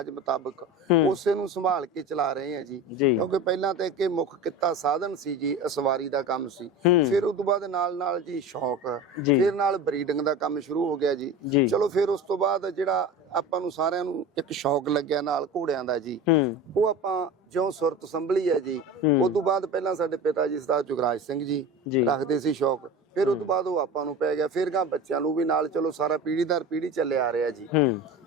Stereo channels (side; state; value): both; normal; correlation 0.31